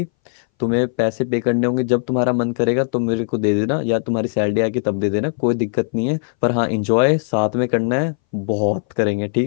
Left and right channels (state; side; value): silent; right; 63 dB below the other